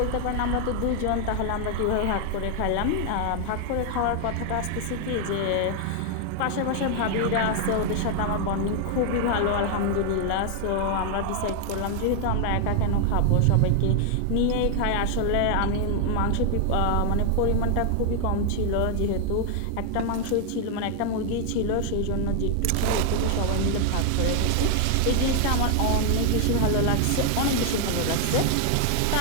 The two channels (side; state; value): both; different; correlation 0.00